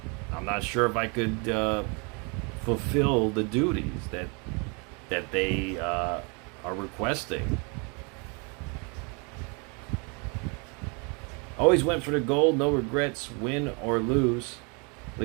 I'm not sure if I could fulfill the duties that they are requesting. Always went for the gold, no regrets, win or lose. At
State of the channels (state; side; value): quieter; left; 33.0 dB